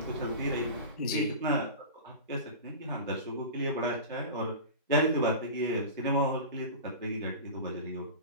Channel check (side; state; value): both; inverted; correlation -0.31